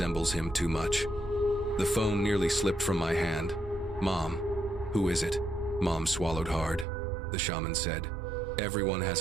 him too much.'" The phone nearly slipped from my hand. "Mom, who is it?" Mom swallowed hard. The shaman said, "Everyone has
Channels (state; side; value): drops out; left; at 6.9 s